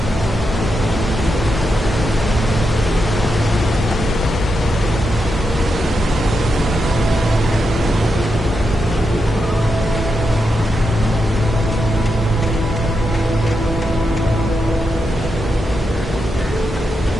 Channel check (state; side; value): normal; both; correlation 0.85